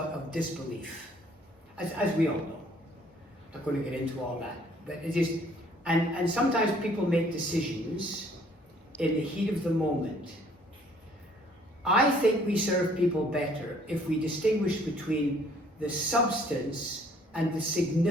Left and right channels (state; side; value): normal; both; correlation 0.60